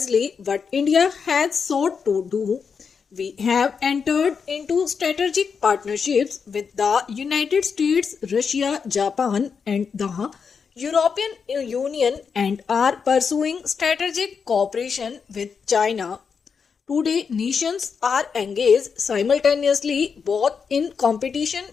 what India has sought to do. We have entered into strategic partnerships with the United States, Russia, Japan, and the European Union, and are pursuing strategic cooperation with China. Today, nations are engaged simultaneously both in competition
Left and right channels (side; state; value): right; quieter; 6.0 dB